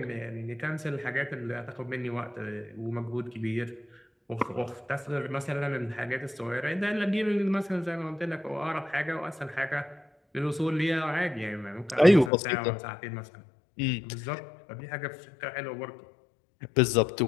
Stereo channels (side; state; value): right; drops out; at 12.3 s